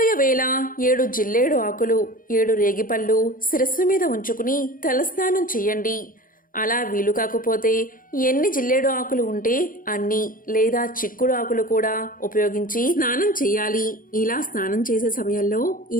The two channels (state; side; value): late; right; 0.40 ms